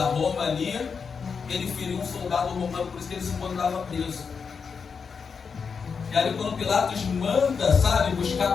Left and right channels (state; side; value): quieter; right; 5.8 dB